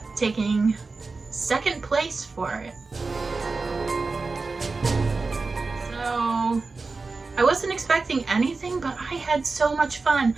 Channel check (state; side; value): quieter; left; 4.0 dB